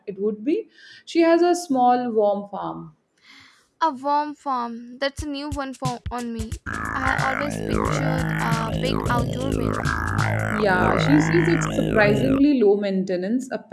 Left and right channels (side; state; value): both; identical; correlation 1.00